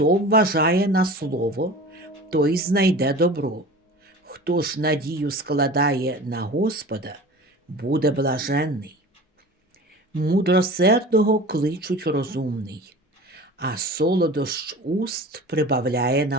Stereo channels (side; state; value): both; normal; correlation 0.38